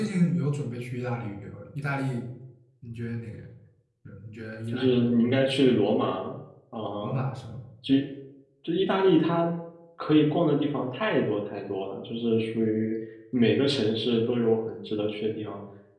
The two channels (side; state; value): both; identical; correlation 1.00